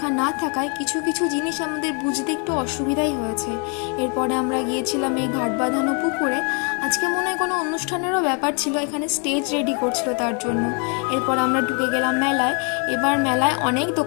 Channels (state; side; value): quieter; right; 37.1 dB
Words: না থাকায় কিছু কিছু জিনিস আমাদের বুঝতে একটু অসুবিধাই হয়েছে। এরপরে আমরা গিয়েছিলাম এই ঘাট বাঁধানো পুকুরে। আজকে মনে হয় কোনো অনুষ্ঠানেরও ব্যাপার ছিল, এখানে স্টেজ রেডি করছিল তার জন্য। এরপর আমরা ঢুকে গেলাম মেলায়। এবার মেলায় অনেক